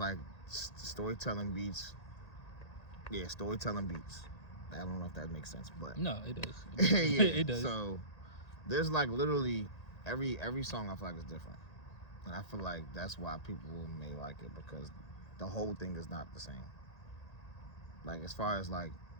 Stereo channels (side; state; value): right; late; 1.8 ms